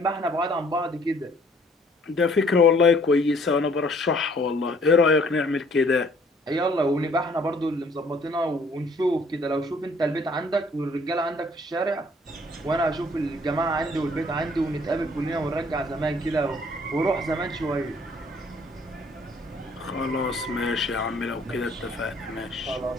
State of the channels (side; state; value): both; normal; correlation 0.60